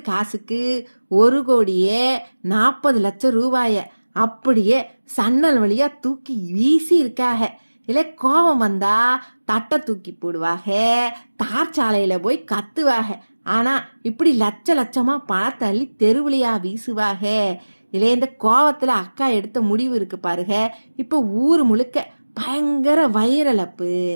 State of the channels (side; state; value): both; inverted; correlation -1.00